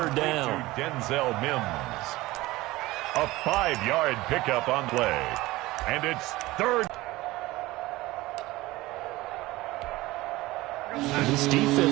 down. Denzel Mims. A 5-yard pickup on play. And it's 3rd. This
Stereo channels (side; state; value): left; quieter; 19.1 dB